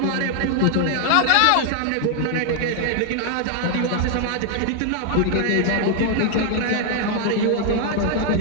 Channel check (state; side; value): different; both; correlation 0.00